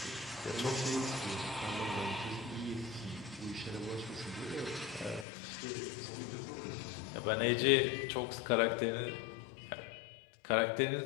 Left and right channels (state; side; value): drops out; right; at 5.2 s